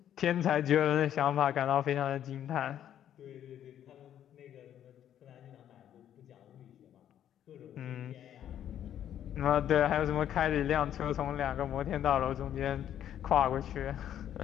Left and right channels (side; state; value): right; quieter; 10.5 dB